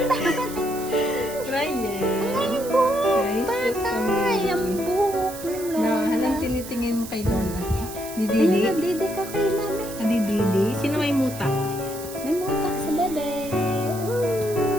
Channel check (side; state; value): right; noise; hiss, 13 dB below the sound